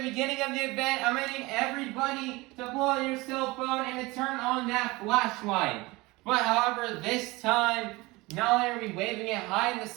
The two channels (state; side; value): quieter; left; 22.3 dB